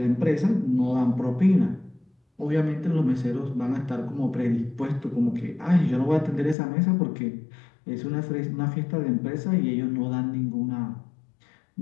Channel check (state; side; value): drops out; right; at 6.6 s